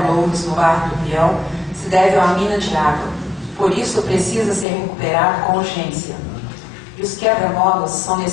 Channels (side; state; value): right; drops out; at 4.7 s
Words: Loures, no bairro do Peão, se deve a uma mina de água. Por isso, precisa ser recuperado com urgência. E os quebra-molas são